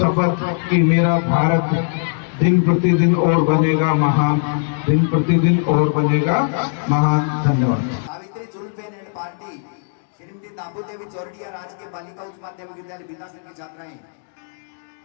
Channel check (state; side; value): silent; right; 66 dB below the other